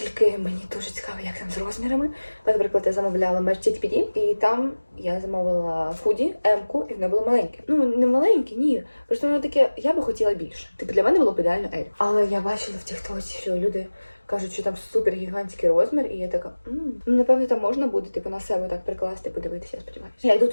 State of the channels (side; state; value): both; inverted; correlation -1.00